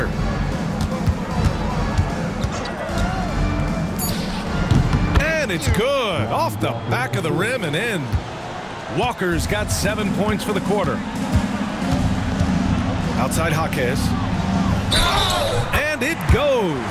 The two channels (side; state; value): both; identical; correlation 1.00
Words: And it's good. Off the back of the rim and in. Walker's got 7 points for the quarter. Outside Jaquez. And it